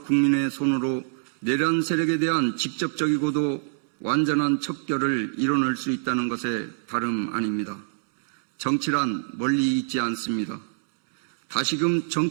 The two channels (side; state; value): left; silent; digital silence